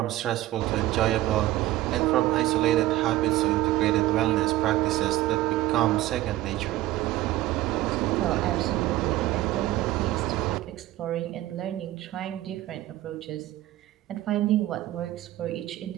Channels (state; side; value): quieter; left; 15.6 dB